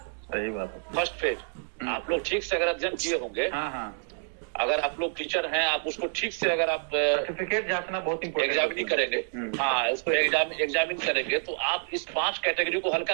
सही बात है, फर्स्ट फेज। आप लोग ठीक से अगर अध्ययन किए होंगे, अगर आप लोग टीचर हैं, आप उसको ठीक से अगर आप सर्टिफिकेट जांचना बहुत इम्पोर्टेंट, एग्जामिन करेंगे, हाँ उसको एग्जामिन करेंगे तो आप इस 5 कैटेगरी को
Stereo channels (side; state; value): left; silent; digital silence